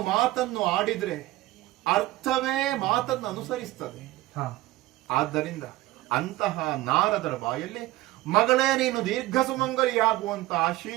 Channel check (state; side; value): quieter; left; 17.7 dB